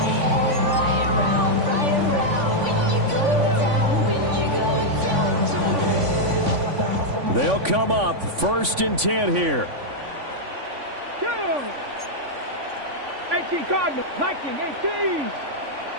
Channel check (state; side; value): late; left; 3.5 ms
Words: They'll come up 1st and 10 here. 18 Cardinals, 19, 18.